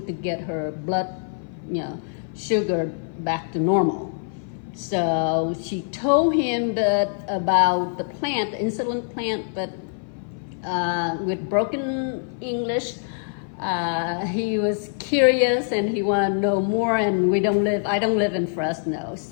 to get her blood, sugar back to normal. So she told him that about the plant, the insulin plant, but with broken English, he was curious and he wanted to know more. And I don't live in Fresno,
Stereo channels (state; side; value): silent; right; 56 dB below the other